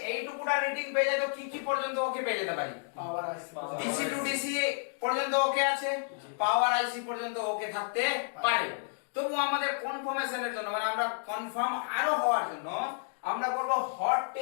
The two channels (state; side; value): silent; right; digital silence